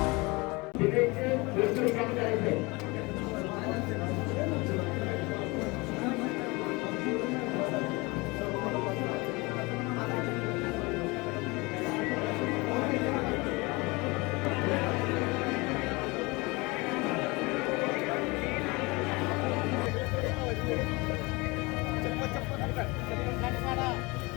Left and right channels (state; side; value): quieter; right; 25.2 dB